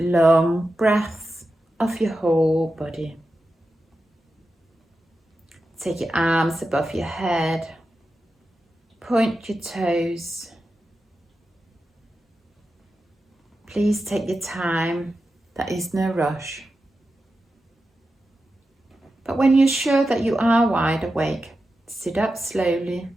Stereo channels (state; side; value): normal; both; correlation 0.91